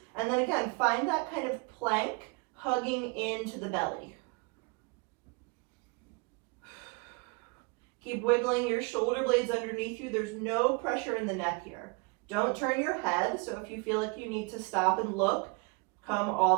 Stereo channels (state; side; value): quieter; left; 29.5 dB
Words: and then again, find that kind of plank hugging into the belly. Keep wiggling your shoulder blades underneath you. There's no pressure in the neck here. Don't turn your head, so if you feel like you need to stop and look, come all